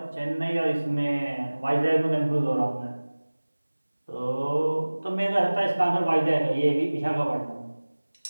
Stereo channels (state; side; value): inverted; both; correlation -1.00